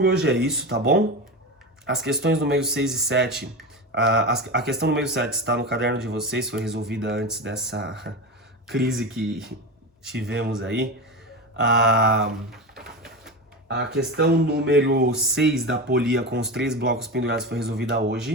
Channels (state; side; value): normal; both; correlation 0.22